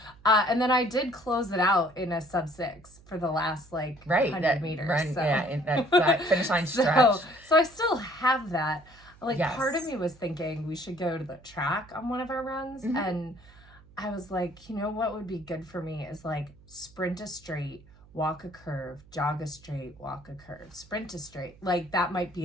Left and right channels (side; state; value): right; noise; hum, 25 dB below the sound